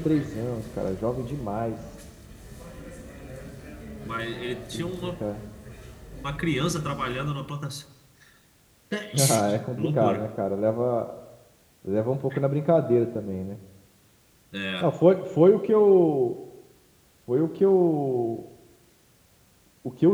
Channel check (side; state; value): both; identical; correlation 1.00